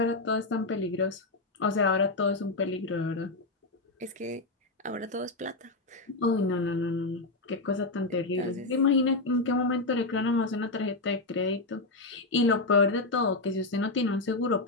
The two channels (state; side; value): quieter; right; 3.2 dB